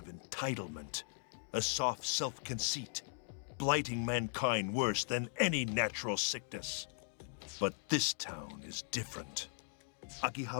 entitlement, a soft self-conceit, blighting mankind worse than any natural sickness. But this town is different.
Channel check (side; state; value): right; silent; digital silence